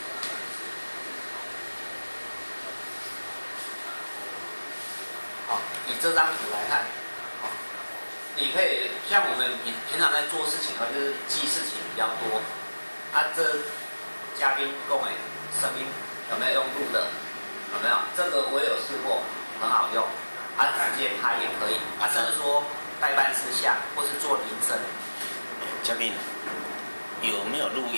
好，以这张图来看，好，你可以像我们平常在做事情的话，就是记事情比较多。这嘉宾讲的声音有没有用录的？有没有？这个我也有试过，很好用。直接拍也可以。甚至说代办事项或是做铃声。嘉宾有没有录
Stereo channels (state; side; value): inverted; both; correlation -1.00